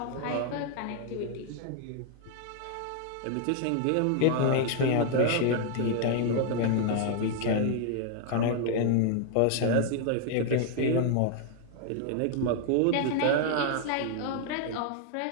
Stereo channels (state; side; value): different; both; correlation 0.00